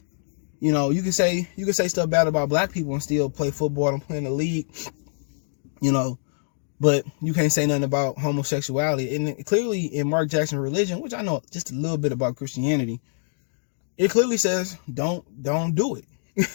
you can say stuff bad about black people and still play football and play in the league, but you can't say nothing about homosexuality. And clearly in Mark Jackson's religion, which I know just a little bit about Christianity, it clearly says don't do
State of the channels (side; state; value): right; silent; digital silence